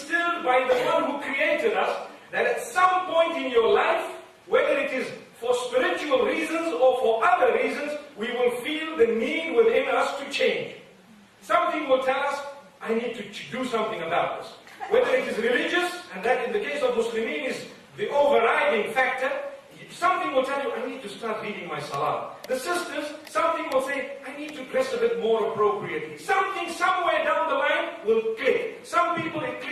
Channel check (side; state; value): both; identical; correlation 1.00